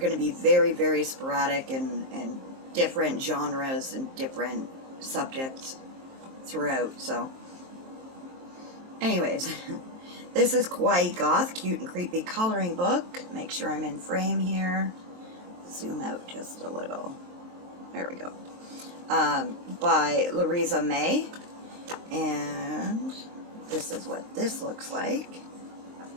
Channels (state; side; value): late; left; 23 ms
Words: to be very, very sporadic and different genres and different subjects throughout. So anyways, this is Kawaii Goth, Cute and Creepy Coloring Book. Make sure I'm in frame here. Zoom out just a little. There we go. By Louisa May. And this is what this looks like.